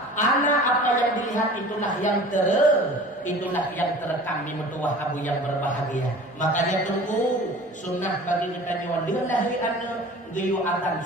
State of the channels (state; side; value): normal; both; correlation 0.42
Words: Anak apa yang dilihat itulah yang terekam di mertua abu yang berbahagia. Makanya tunggu sunnah bagi kita nyawa lillahi anak geyu adzan